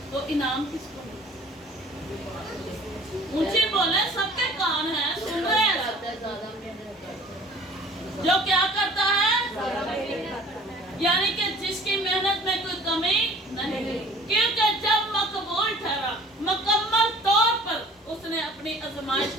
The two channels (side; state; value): both; normal; correlation 0.49